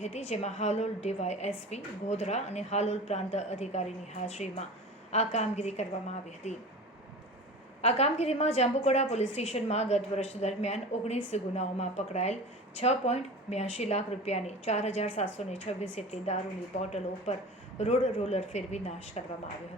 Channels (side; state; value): both; normal; correlation 0.35